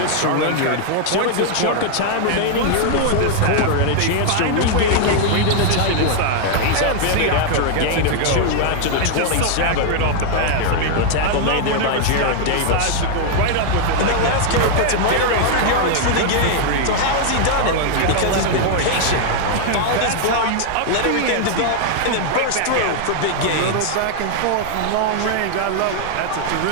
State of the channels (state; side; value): different; both; correlation 0.00